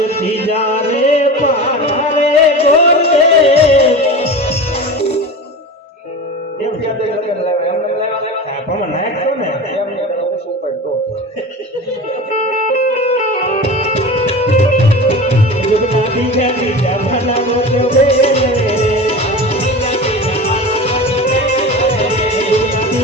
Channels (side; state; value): both; normal; correlation 0.31